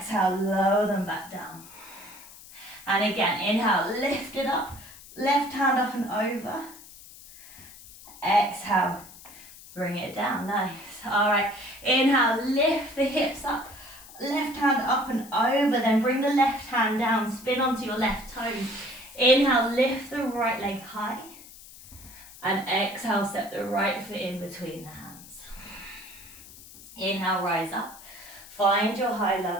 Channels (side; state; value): left; noise; hiss, 19 dB below the sound